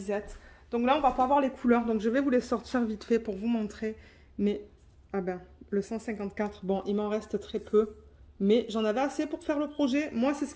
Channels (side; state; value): both; identical; correlation 1.00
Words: Donc là, on va pas voir les couleurs. Donc, je vais vous les sortir vite fait pour vous montrer. Mais, ah ben, le 154, bon, il m'en reste très peu. Mais j'en avais assez pour faire le projet. Moi, c'est ce